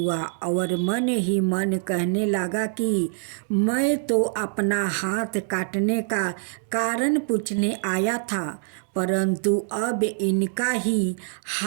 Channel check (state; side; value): silent; left; 62 dB below the other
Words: और मन ही मन कहने लगा कि मैं तो अपना हाथ काटने का कारण पूछने आया था, परंतु अब इनका ही